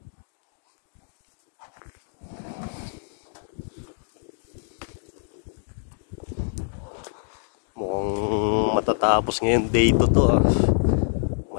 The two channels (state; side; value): silent; right; digital silence